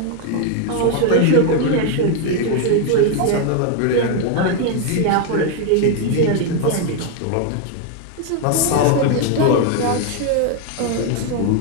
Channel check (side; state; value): both; different; correlation 0.01